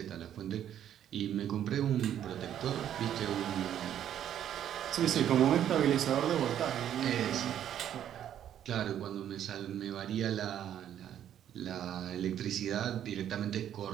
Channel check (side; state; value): left; quieter; 10.4 dB